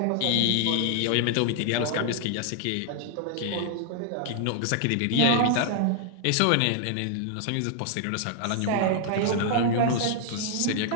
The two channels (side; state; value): both; different; correlation 0.00